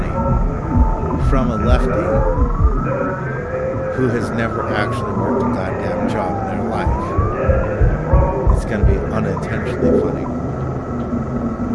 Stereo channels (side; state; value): both; identical; correlation 1.00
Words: From a lefty who has never actually worked a goddamn job in their life. It's going to be unintentionally funny.